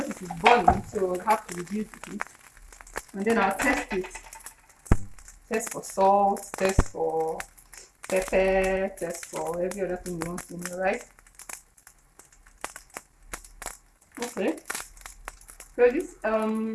it's boiling, so I'll have to reduce the heat. And then I'll test it. Test for salt, test for pepper, test for every other thing you want to know, right? Okay. So this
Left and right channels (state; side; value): identical; both; correlation 1.00